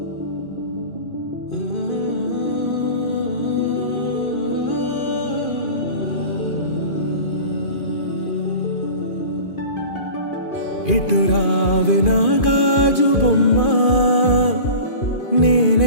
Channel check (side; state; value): right; late; 2.4 ms